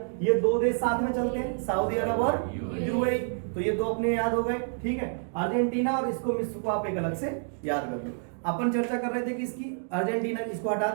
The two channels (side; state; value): left; silent; digital silence